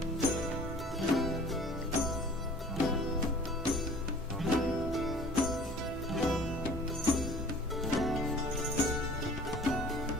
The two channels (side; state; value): both; normal; correlation 0.49